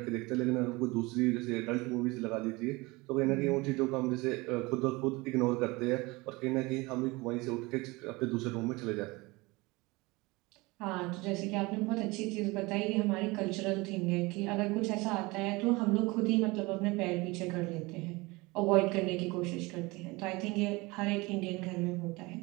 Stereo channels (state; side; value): quieter; left; 23.5 dB